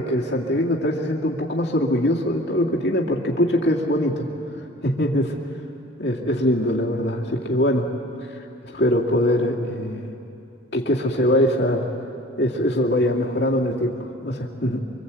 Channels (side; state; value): both; normal; correlation 0.46